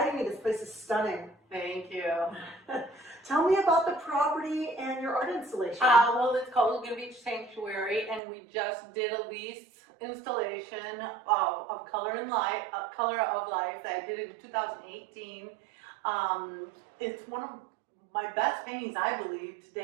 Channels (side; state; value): left; drops out; at 8.2 s